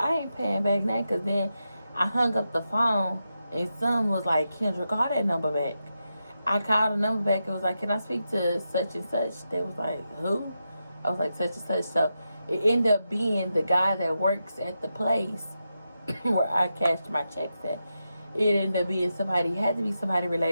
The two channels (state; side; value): inverted; both; correlation -0.88